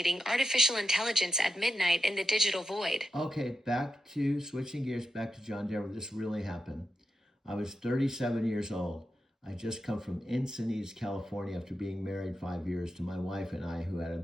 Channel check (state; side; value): normal; both; correlation 0.88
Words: artificial intelligence at midnight in the digital void? Okay, back to switching gears, back to John Denver. This really happened. I was 37 years old. I just come from Encinitas, California, after being married 5 years to my wife and I, who had